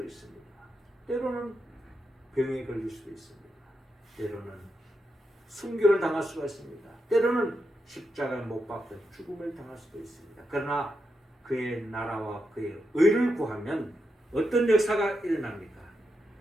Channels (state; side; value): normal; both; correlation 0.85